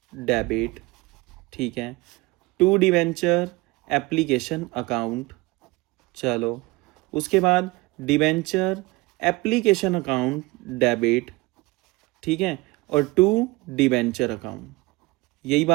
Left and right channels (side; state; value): left; quieter; 22.7 dB